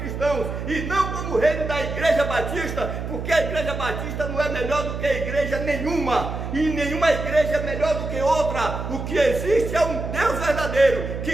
e não como o reino da igreja batista, porque a igreja batista não é melhor do que a igreja nenhuma, e nenhuma igreja é melhor do que outra. O que existe é um Deus verdadeiro,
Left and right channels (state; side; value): noise; right; hum, 6 dB below the sound